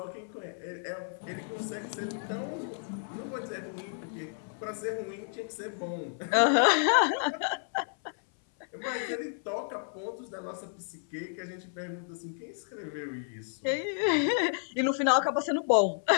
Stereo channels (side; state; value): right; silent; 57 dB below the other